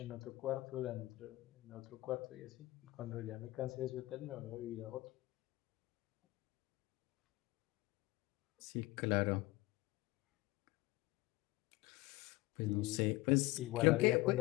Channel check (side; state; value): right; quieter; 19.7 dB